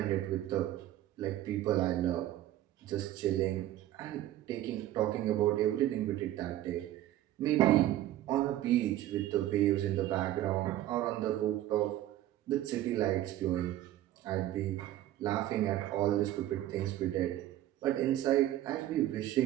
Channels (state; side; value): quieter; left; 13.7 dB